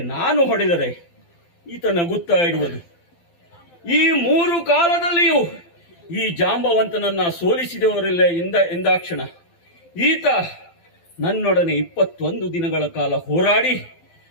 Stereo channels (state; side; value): late; right; 12 ms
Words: ನಾನು ಹೊಡೆದರೆ ಈತ ನಗುತ್ತಾ ಇರುವುದು. ಈ 3 ಕಾಲದಲ್ಲಿಯೂ ಈ ಜಾಂಬವಂತನನ್ನ ಸೋಲಿಸಿದವರಿಲ್ಲ ಎಂದಾಕ್ಷಣ ಈತ ನನ್ನೊಡನೆ 21 ದಿನಗಳ ಕಾಲ ಹೋರಾಡಿ